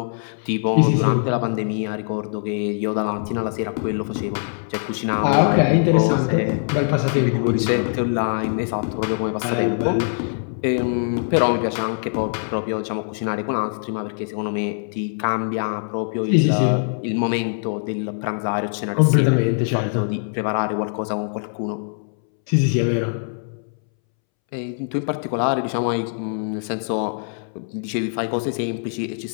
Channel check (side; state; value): right; silent; 64 dB below the other